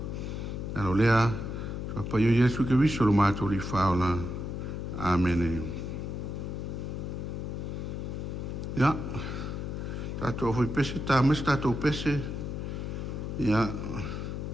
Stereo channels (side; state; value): left; noise; hum, 4 dB below the sound